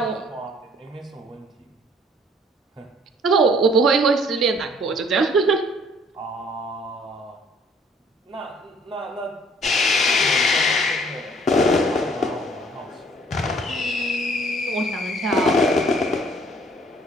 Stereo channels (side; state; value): both; normal; correlation 0.59